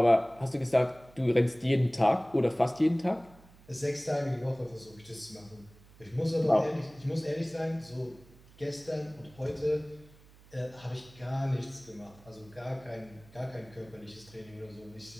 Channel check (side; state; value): right; noise; hum, 24 dB below the sound